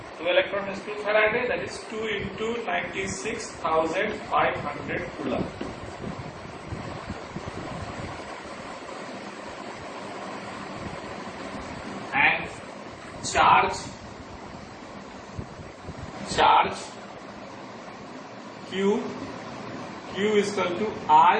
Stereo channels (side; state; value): both; identical; correlation 1.00